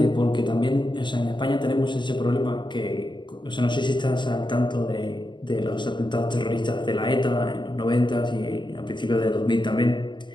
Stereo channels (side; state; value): right; late; 0.22 ms